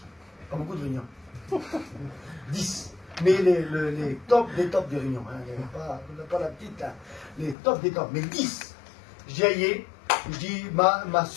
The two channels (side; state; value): right; drops out; at 7.6 s